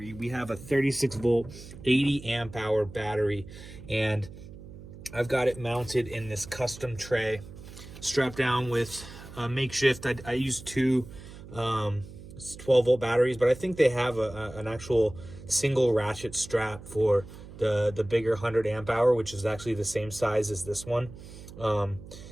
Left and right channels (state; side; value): noise; right; hum, 16 dB below the sound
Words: We have a 36 volt 80 amp hour battery, and I've got it mounted in this custom tray, strapped down with a makeshift. I use two 12 volt batteries, but I think they have an actual single ratchet strap for the bigger 100 amp hour, which is actually the same size as this one.